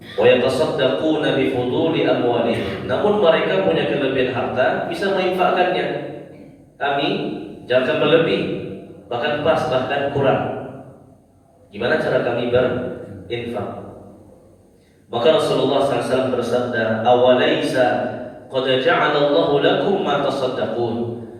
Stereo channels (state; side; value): identical; both; correlation 1.00